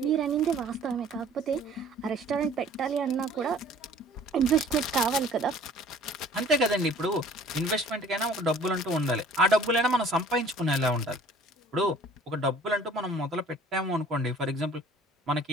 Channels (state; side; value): normal; both; correlation 0.51